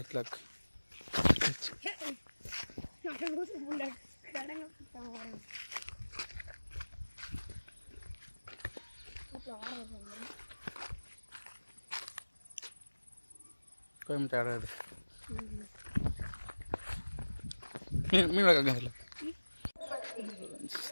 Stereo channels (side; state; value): both; inverted; correlation -1.00